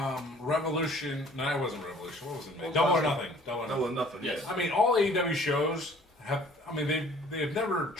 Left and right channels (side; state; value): both; normal; correlation 0.54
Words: Revolution. No, it wasn't Revolution. What was it? Double or Nothing. Double or Nothing. Yes. Yes. I mean, all AEW shows have. I mean, they've never